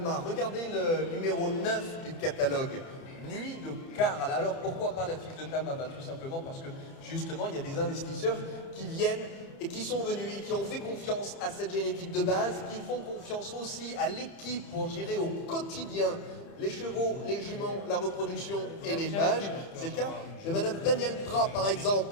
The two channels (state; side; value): late; right; 30 ms